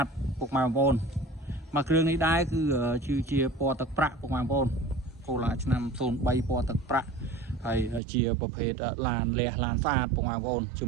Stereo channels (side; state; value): left; drops out; at 8.0 s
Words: តពុកម៉ែបងប្អូនមកគ្រឿងនេះដែរគឺជាពណ៌ទឹកប្រាក់ពុកម៉ែបងប្អូនកូឡាឆ្នាំ03ពណ៌ទឹកប្រាក់ហើយជាប្រភេទឡានលះឡានស្អាតពុកម៉ែបងប្អូនជា